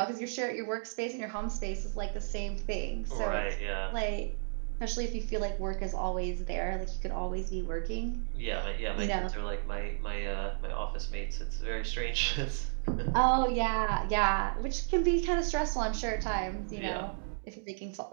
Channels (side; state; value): left; silent; digital silence